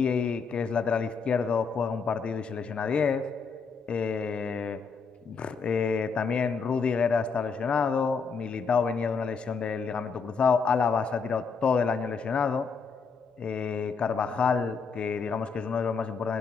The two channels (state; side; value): quieter; right; 5.3 dB